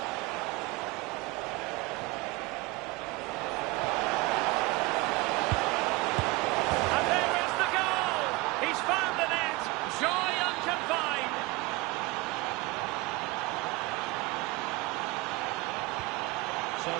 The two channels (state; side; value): quieter; left; 21.9 dB